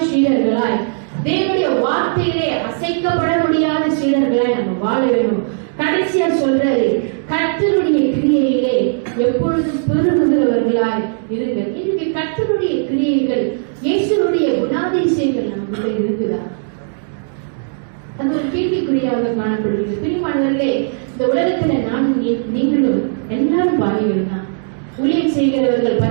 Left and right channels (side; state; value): left; silent; digital silence